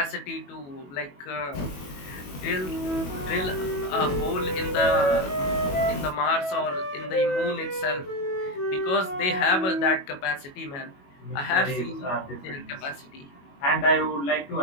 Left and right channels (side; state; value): right; late; 21 ms